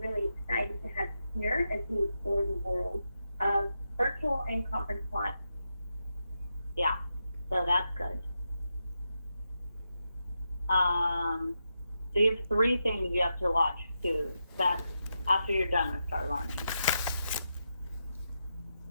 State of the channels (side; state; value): both; inverted; correlation -0.86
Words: really excited to have you here as we explore the world of virtual and conference live. Yeah, so that's good. So you have 3 things you have to watch too. That after you're done with Start Learning.